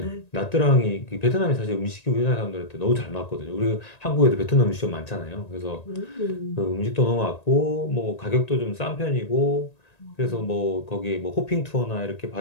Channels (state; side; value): late; right; 1.9 ms